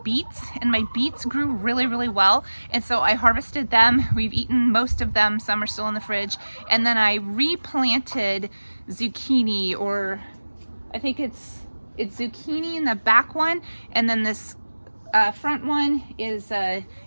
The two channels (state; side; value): inverted; both; correlation -1.00